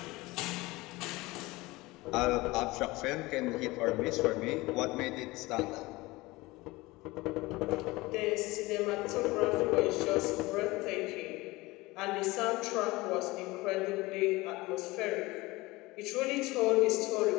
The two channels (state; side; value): quieter; right; 21.2 dB